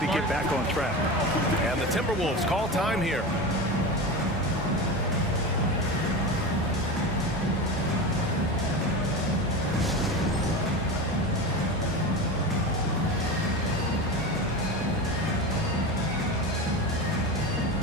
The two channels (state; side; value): normal; both; correlation 0.25